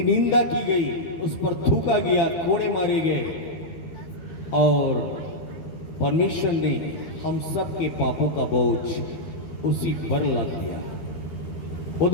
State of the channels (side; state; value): right; late; 12 ms